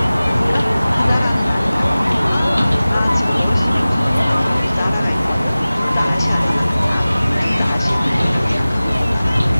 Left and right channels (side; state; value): both; inverted; correlation -0.98